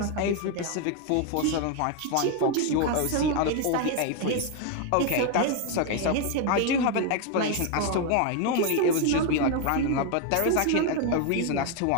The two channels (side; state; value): both; different; correlation 0.01